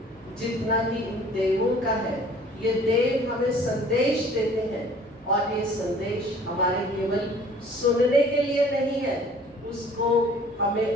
जितना कि इन देवों का है। ये देव हमें संदेश देते हैं, और ये संदेश हमारे केवल सुनने के लिए नहीं है, उसको हमें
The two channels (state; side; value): normal; both; correlation 0.52